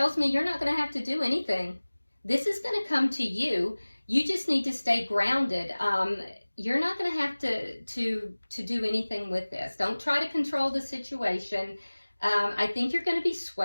me you're not going to have to do anything. This is going to come to you. You just need to stay grounded. You're not going to have to do anything with this. Don't try to control the situation. I think you're going to be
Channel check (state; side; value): inverted; both; correlation -1.00